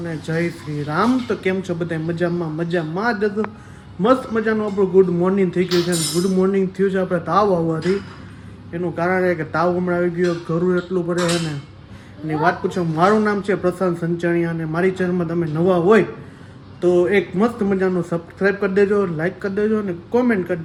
જય શ્રી રામ. તો કેમ છો બધા? મજામાં જ હતો. મસ્ત મજાનું આપણું ગુડ મોર્નિંગ થઈ ગયું છે. ગુડ મોર્નિંગ થયું છે આપણે તાવ આવવાથી. એનું કારણ એ કે તાવ હમણાં આવી ગયો, ઘરું એટલું પડે છે ને એની વાત પૂછો. મારું નામ છે પ્રશાંત સંચાણીયા અને મારી ચેનલમાં તમે નવા હોય તો એક મસ્ત મજાનું સબસ્ક્રાઈબ કરી દેજો, લાઈક કરી દેજો અને કોમેન્ટ કરી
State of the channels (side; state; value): both; identical; correlation 1.00